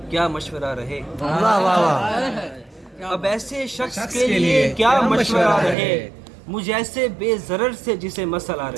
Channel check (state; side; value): drops out; left; at 5.8 s